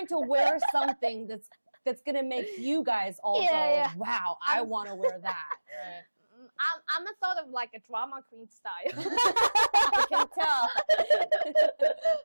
to wear something that's gonna make you guys all go, wow, I want to wear that. Right. I'm a sort of like a drama queen style. I can tell.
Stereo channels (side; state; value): both; inverted; correlation -1.00